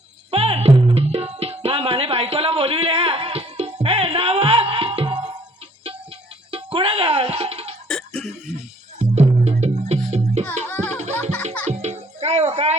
पण माने बायकोला बोलविले हे नाव कुठं गा काय हो काय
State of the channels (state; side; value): normal; both; correlation 0.60